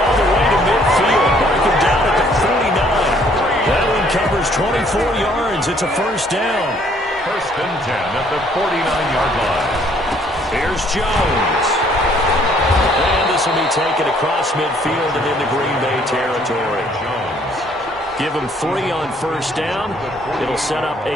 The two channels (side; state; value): both; normal; correlation 0.62